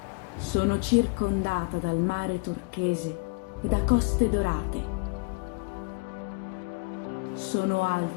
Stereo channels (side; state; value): right; quieter; 30.4 dB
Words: Sono circondata dal mare turchese e da coste dorate. Sono